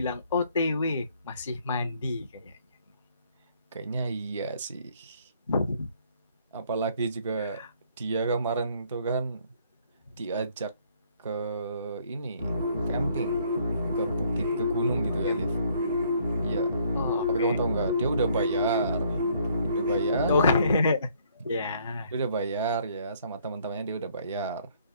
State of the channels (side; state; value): both; inverted; correlation -0.64